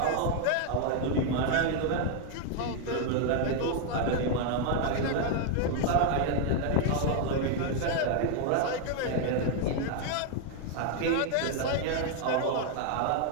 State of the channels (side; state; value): both; different; correlation 0.00